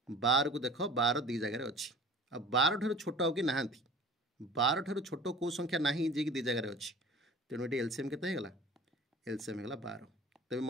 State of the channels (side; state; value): both; normal; correlation 0.42